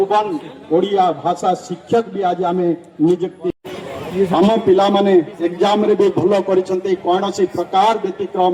ओडिया भाषा शिक्षक भी आज आमे नियुक्ति हम पिला माने एग्जाम रे भी भलो करिसंते कोन से प्रकार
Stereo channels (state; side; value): identical; both; correlation 1.00